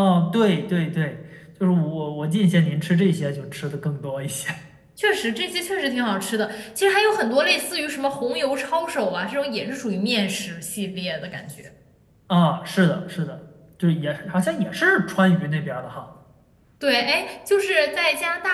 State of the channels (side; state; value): both; identical; correlation 1.00